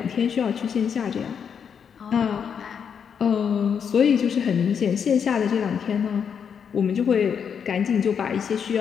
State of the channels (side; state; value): right; quieter; 7.2 dB